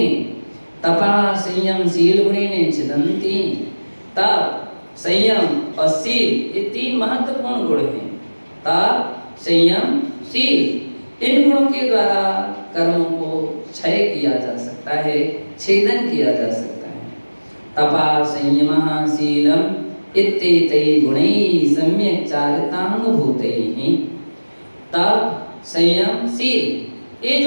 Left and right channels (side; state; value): both; inverted; correlation -1.00